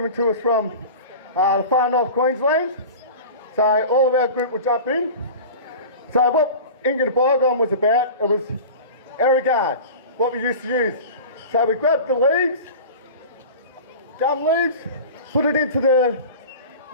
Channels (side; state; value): both; inverted; correlation -0.35